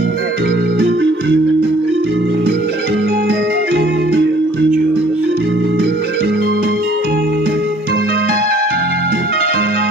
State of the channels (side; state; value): both; normal; correlation 0.56